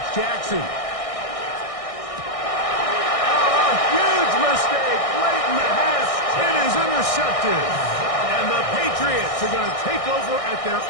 Jackson. Oh, huge mistake late in the half. It is intercepted. And the Patriots are going to take over at their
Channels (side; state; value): right; late; 1.6 ms